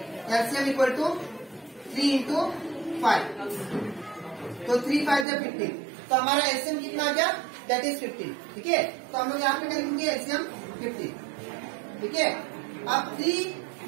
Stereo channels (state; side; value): drops out; left; at 5.2 s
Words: एलसीएम इक्वल टू 3 इंटू 5, तो 3 5 जा 15, तो हमारा एलसीएम कितना आ गया दैट इज 15। ठीक है, तो हम लोग यहाँ पे लिखेंगे एलसीएम 15। ठीक है, अब 3